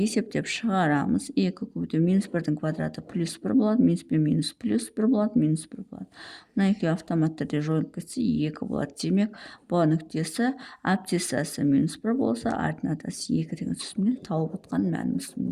шығарамыз. 2 көбейту -1-дің квадраты +1 болады, минус пен минус плюс 1 болады, -1 болады. Мына екеуі автомат түрде жойылып кетсе 2 болады. Демек, бұл нүктесі абсциссасы -1 болса, ординатасы 2 деген сөзіне тауып отқан мәніміз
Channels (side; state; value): both; identical; correlation 1.00